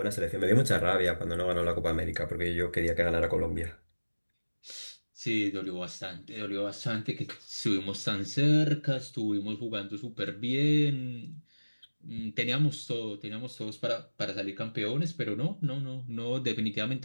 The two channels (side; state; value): both; inverted; correlation -1.00